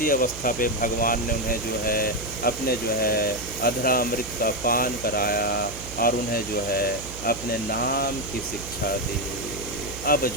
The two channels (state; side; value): noise; right; hum, 12 dB below the sound